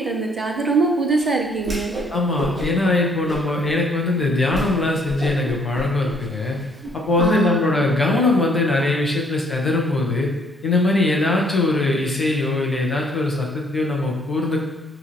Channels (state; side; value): normal; both; correlation 0.64